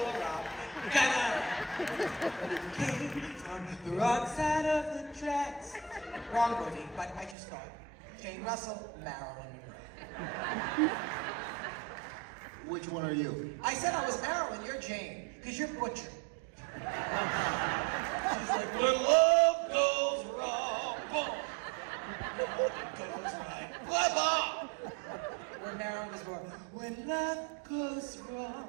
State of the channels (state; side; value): drops out; left; at 7.4 s